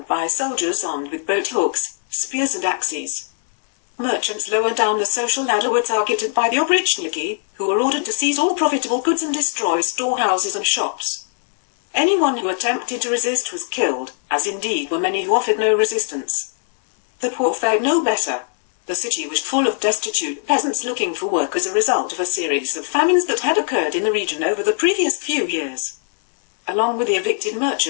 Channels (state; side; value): silent; right; 66 dB below the other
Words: by soldiers armed with boat hooks, spears and axes. Merchants lower down the social ladder were targeted by the Oprichniki, who were ordered to seize all profitable goods and destroy storehouses and shops. Anyone who attempted to resist was killed, as indeed were many who offered no resistance. The poor fared no better. The city was full of destitute peasants looking for work as a result of a series of famines that had occurred in the region over the previous few years. Along with the evicted